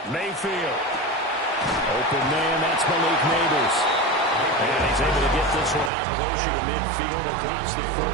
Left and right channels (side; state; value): left; drops out; at 5.9 s